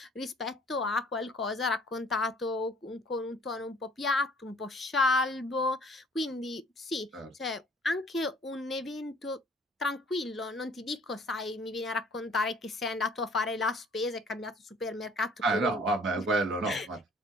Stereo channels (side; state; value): both; normal; correlation 0.55